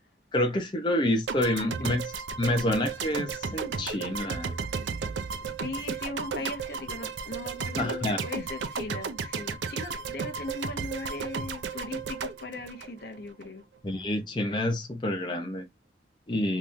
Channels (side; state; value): both; normal; correlation 0.44